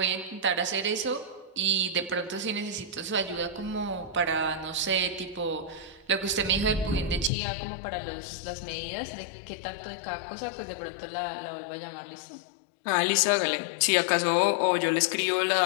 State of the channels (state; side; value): drops out; right; at 7.3 s